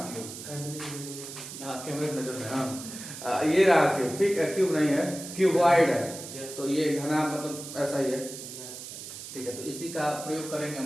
क्यूब, हाँ कैमरे में नजर है, हाँ ये रहा क्यूब, ठीक है, क्यूब नहीं है, क्यूबॉइड है। तो ये घना मतलब ऐसा ही है, ठीक है। तो इसी का प्रयोग करेंगे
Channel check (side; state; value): right; noise; hiss, 11 dB below the sound